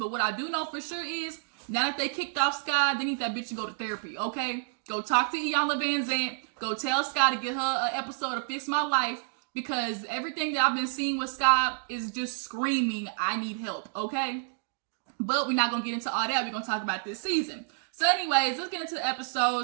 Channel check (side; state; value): left; silent; digital silence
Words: what I do know for sure is, now that they kicked off Sky, they need that bitch to go to therapy, okay? Go talk to Iyanla Vanzant. Go tell Sky to get her an episode of Fix My Life. Because everything that I've been seeing with Sky is just screaming, I need help, okay? But we're not going to get into all that. We're going to talk about this season. So anyways, let's get into the episode.